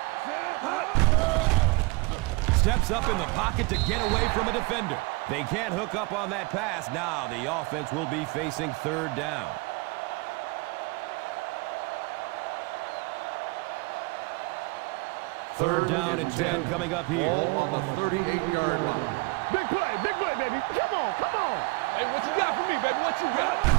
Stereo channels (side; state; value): left; quieter; 26.1 dB